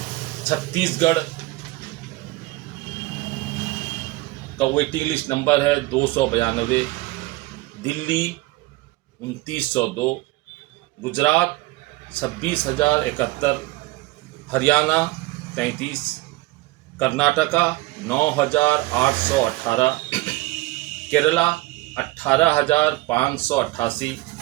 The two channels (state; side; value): quieter; left; 20.0 dB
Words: چھتیس گڑھ کا ویٹنگ لسٹ نمبر ہے 292، دلی 2902، گجرات 26,071، ہریانہ 33، کرناٹکا 9,818، کیرلا 18,588،